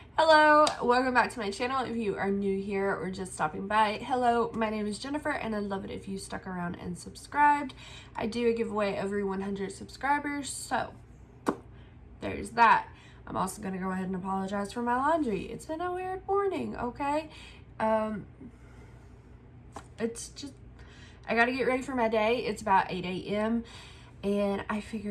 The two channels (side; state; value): both; identical; correlation 1.00